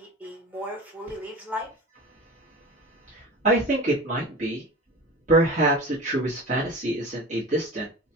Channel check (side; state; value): both; normal; correlation 0.34